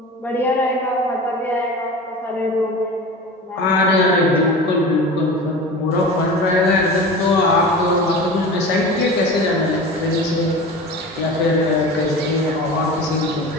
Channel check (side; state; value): both; normal; correlation 0.33